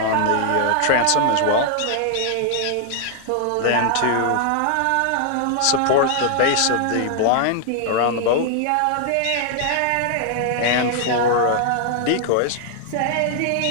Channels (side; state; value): both; different; correlation 0.00